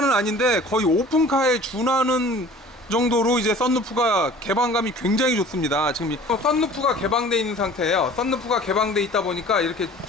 아닌데 거의 오픈카에 준하는 정도로 이제 썬루프가 개방감이 굉장히 좋습니다. 지금 썬루프가 개방되어 있는 상태예요. 썬루프가 개방되어 있다 보니까 이렇게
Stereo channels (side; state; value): both; normal; correlation 0.46